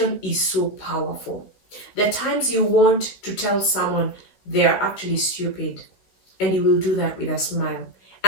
is so powerful. The times you want to tell someone they are actually stupid, and you will do that with a smile,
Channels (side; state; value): right; late; 15 ms